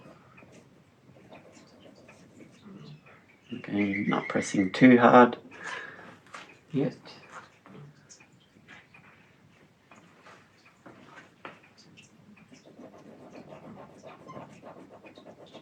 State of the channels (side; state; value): both; identical; correlation 1.00